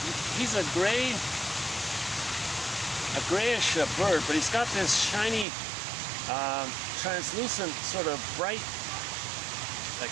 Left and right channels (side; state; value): left; drops out; at 5.5 s